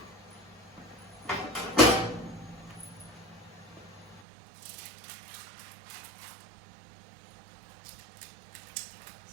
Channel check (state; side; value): drops out; left; at 4.2 s